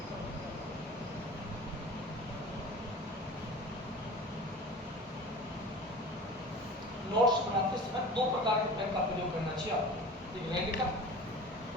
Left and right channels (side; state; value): both; normal; correlation 0.38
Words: नोट्स बनाते समय दो प्रकार के पेन का प्रयोग करना चाहिए आपको, एक रेड का